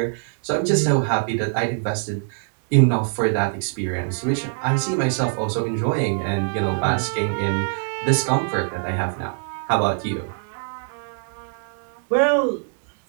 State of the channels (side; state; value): left; silent; digital silence